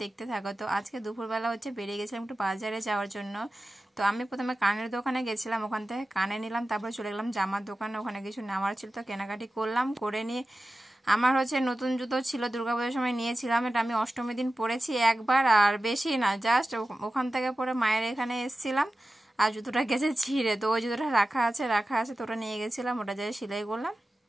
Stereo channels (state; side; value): normal; both; correlation 0.94